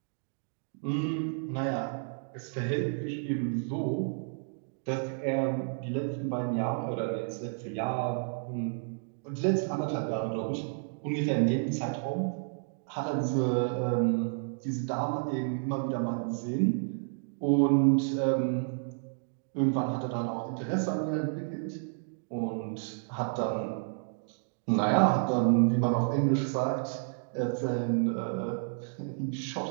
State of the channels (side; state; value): left; silent; digital silence